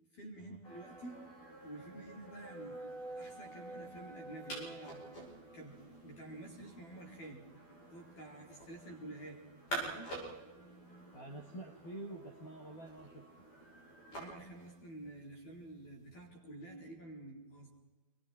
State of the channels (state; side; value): late; right; 12 ms